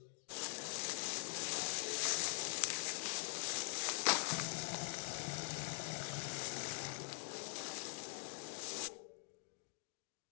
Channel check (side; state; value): right; silent; digital silence